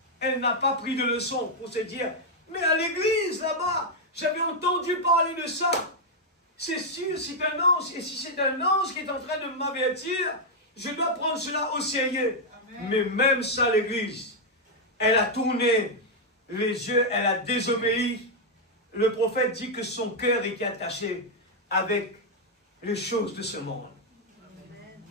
elle n'a pas pris de leçon pour se dire, mais à l'église là-bas, j'avais entendu parler de ça. C'est sûr, c'est un ange. Et si c'est un ange qui est en train de m'avertir, je dois prendre cela au sérieux. Amen. Mais même ça, l'église, elle a tourné les yeux, elle a désobéi. Le prophète dit que son cœur était attaché avec les choses de ce monde. Amen.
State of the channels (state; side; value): normal; both; correlation -0.01